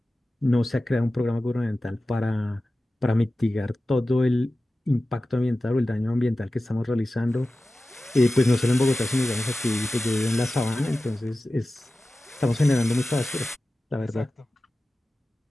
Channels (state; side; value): normal; both; correlation 0.95